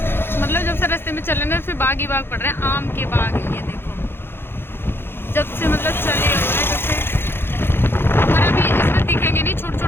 मतलब जब से रास्ते में चले ना, फिर बाग ही बाग पड़ रहे हैं। आम के बाग है ये देखो, जब से मतलब चले हुए हैं, जब से। और अभी इसमें दिखेंगे नहीं, छोटे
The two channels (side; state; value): right; late; 0.11 ms